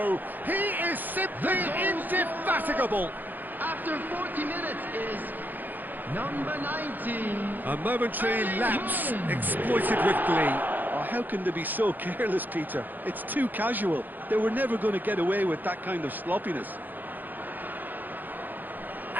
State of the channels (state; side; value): late; left; 0.087 ms